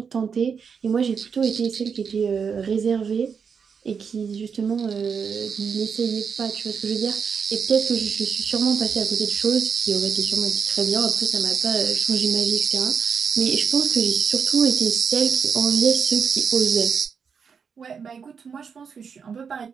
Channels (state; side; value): quieter; left; 6.3 dB